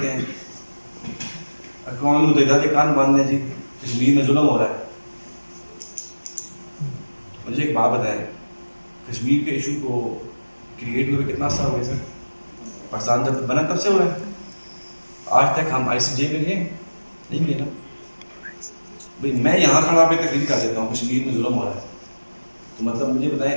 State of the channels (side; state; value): both; inverted; correlation -1.00